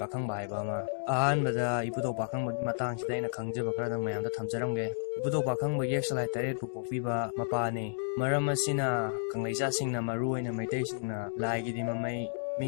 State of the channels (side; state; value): right; silent; digital silence